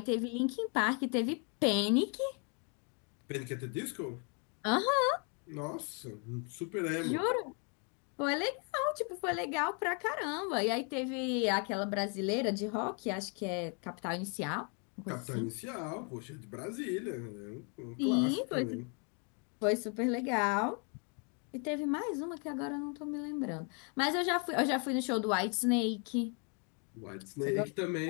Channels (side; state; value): right; quieter; 37.6 dB